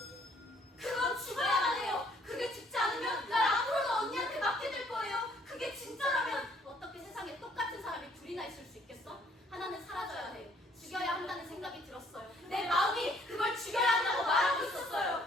그건 죽어야만 해요. 그게 죽지 않으면 날 앞으로도 언니한테 맡게 될 거예요. 그게 진짜라면. 어떻게 세상에 똑같은 사람이 둘이나 있을 수 있겠어? 하나는 사라져야 해. 죽여야 한다는 생각이 들었어요. 내 마음이 그걸 죽여야 한다고 말하고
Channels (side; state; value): both; normal; correlation 0.63